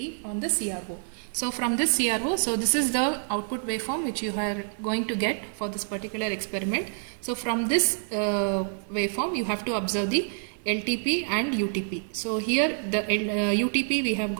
on the CRO. So from this CRO, so this is the output waveform which you are going to get for this particular experiment. So from this waveform you have to observe the LTP and UTP. So here the UTP we have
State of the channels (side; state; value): left; silent; 60 dB below the other